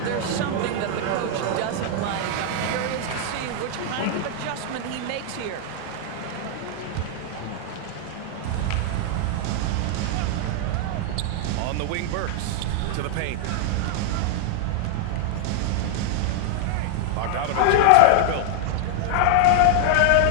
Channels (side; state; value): both; different; correlation -0.01